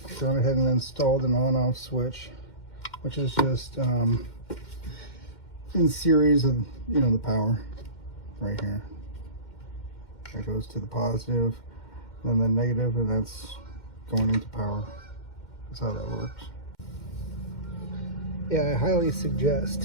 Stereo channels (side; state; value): right; late; 2.1 ms